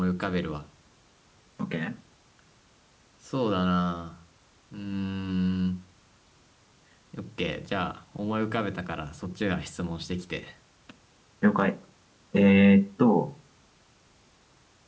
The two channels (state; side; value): identical; both; correlation 1.00